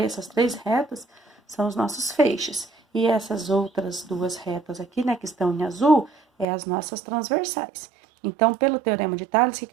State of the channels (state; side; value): drops out; left; at 6.5 s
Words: essas três retas são os nossos feixes. E essas outras duas retas aqui, né, que estão em azul, é as nossas transversais. Então, pelo teorema de Tales, o